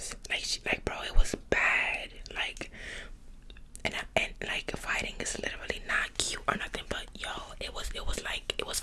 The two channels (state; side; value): identical; both; correlation 1.00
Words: Like, bro, it was bad. Like, and like, fighting is literally not cute or nothing, but yo, it was